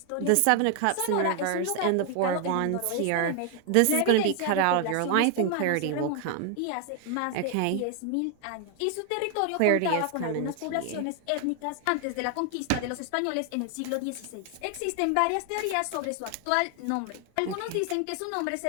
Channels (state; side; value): different; both; correlation 0.00